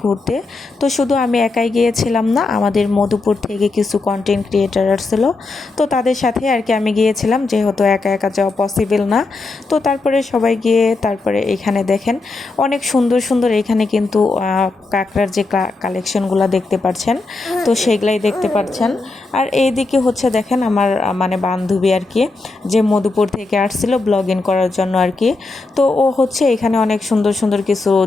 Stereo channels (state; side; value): quieter; right; 3.5 dB